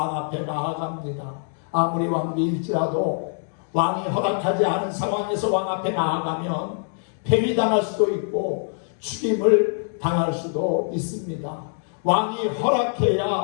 앞에 나아갑니다. 아무리 왕비일지라도 왕이 허락하지 않은 상황에서 왕 앞에 나아가면 폐위당할 수도 있고 죽임을 당할 수도 있습니다. 왕이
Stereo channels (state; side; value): silent; right; 63 dB below the other